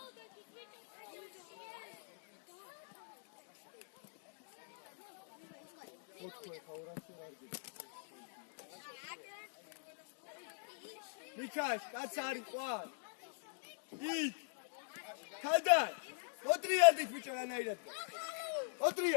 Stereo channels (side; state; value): right; silent; digital silence